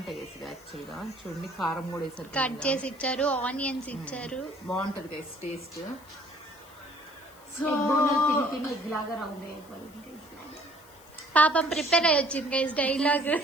గైస్. యాక్చువల్ గా చూడండి, కారం కూడా వేసారు, కట్ చేసి ఇచ్చారు, ఆనియన్స్ ఇచ్చారు. బాగుంటది గైస్ టేస్ట్. సో తిని ఎగ్ లాగా రౌండ్ అయిపోయింది. పాపం ప్రిపేర్ అయ్యి వచ్చింది గైస్ డైలాగ్.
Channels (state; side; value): noise; left; hiss, 24 dB below the sound